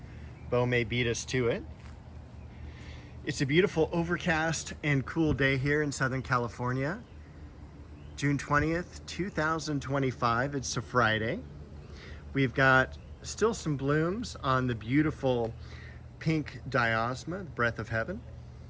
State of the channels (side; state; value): both; identical; correlation 1.00